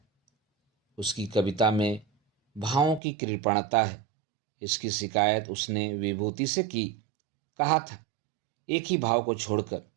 उसकी कविता में भावों की कृपणता है, इसकी शिकायत उसने विभूति से की। कहा था, एक ही भाव को छोड़कर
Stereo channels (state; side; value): drops out; left; at 3.0 s